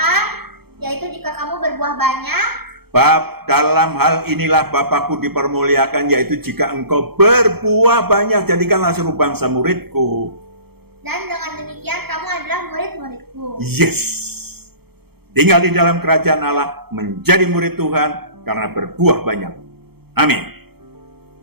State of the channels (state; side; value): late; left; 0.96 ms